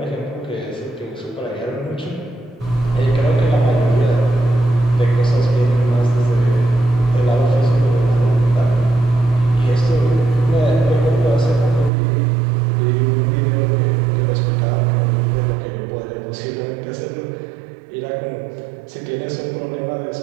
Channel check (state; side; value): drops out; left; at 11.9 s